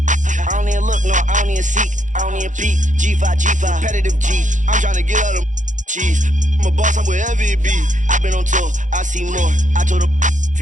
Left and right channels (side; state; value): left; late; 0.36 ms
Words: I don't even look, no, I don't even seek, I don't even peek. G5, repetitive G. I'm trying to get out of cheese. I'm a boss, I'm wherever it be. I've been on tour, I see more. I told her